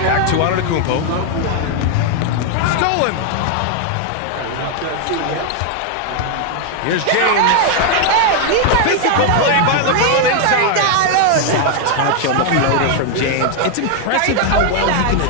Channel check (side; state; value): both; different; correlation 0.00